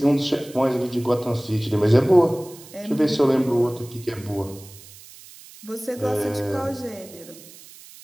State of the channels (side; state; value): right; noise; hiss, 20 dB below the sound